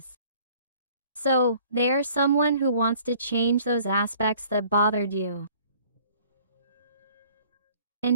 So, they are someone who wants to change those aspects that bothered you.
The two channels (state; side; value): inverted; both; correlation -0.54